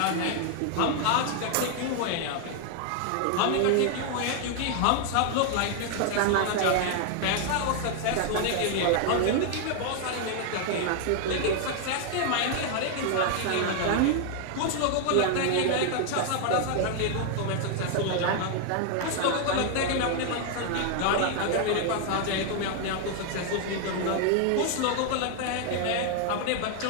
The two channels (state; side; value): different; both; correlation 0.00